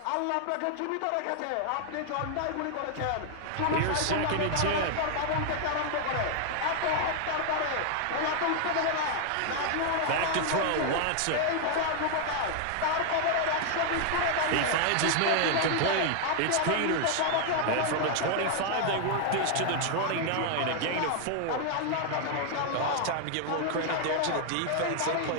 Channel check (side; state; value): both; different; correlation 0.00